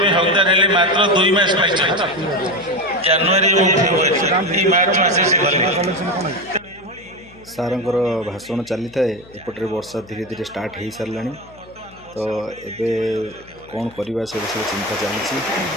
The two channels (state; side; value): noise; left; hum, 23 dB below the sound